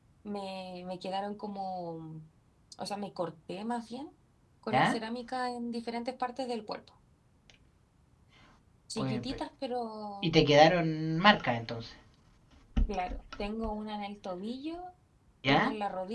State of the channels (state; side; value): identical; both; correlation 1.00